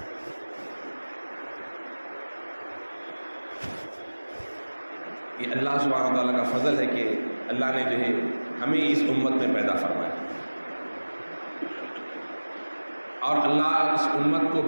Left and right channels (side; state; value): both; inverted; correlation -1.00